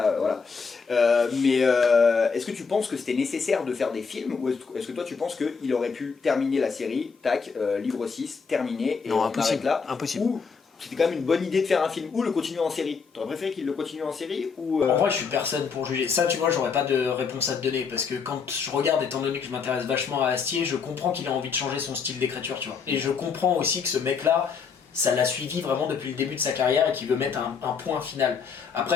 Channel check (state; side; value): quieter; right; 5.6 dB